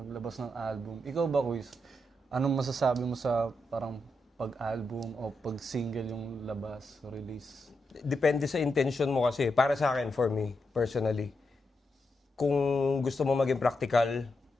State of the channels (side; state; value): both; normal; correlation 0.84